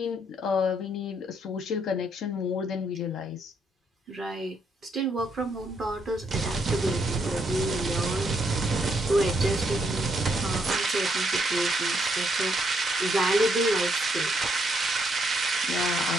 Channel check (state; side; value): normal; both; correlation 0.75